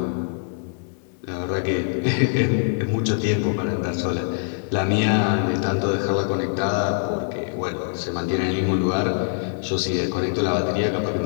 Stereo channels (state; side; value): silent; right; 63 dB below the other